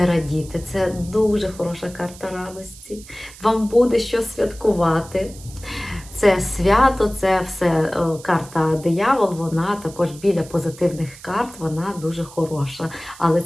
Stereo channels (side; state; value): right; noise; hiss, 19 dB below the sound